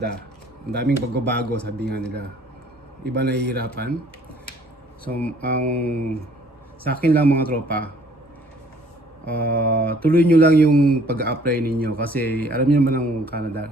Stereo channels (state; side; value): normal; both; correlation 0.58